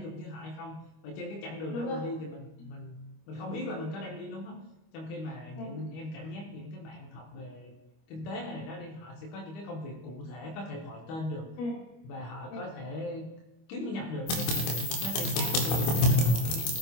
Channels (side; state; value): right; late; 25 ms